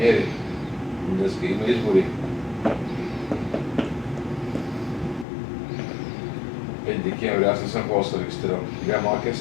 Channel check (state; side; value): drops out; right; at 5.2 s